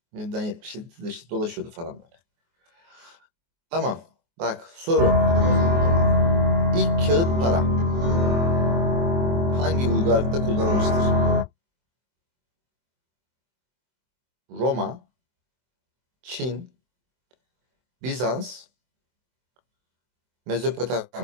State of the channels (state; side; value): late; left; 24 ms